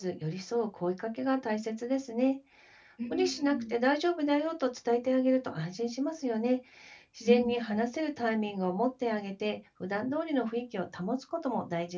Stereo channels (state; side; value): identical; both; correlation 1.00